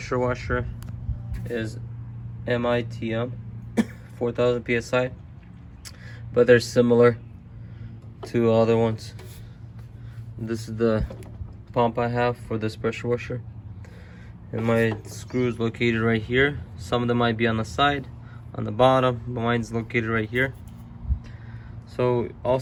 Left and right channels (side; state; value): both; identical; correlation 1.00